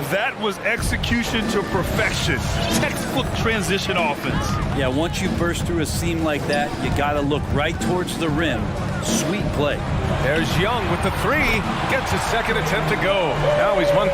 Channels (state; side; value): identical; both; correlation 1.00